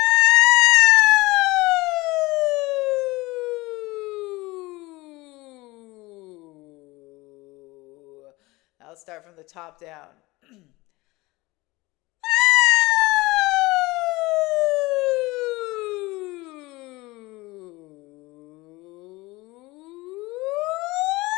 I'll start from the top down.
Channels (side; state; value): right; quieter; 21.4 dB